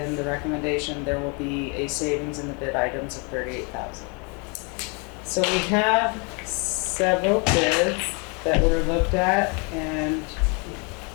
the recommendation, there will be a savings in the bid items of $38,000. So we have several bids that were looked at and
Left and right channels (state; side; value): quieter; right; 33.2 dB